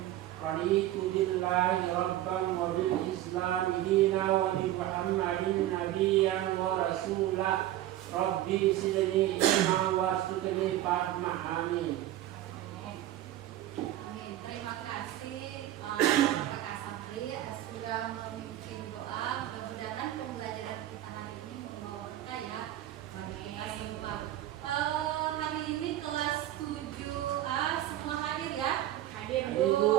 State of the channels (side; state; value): left; quieter; 13.7 dB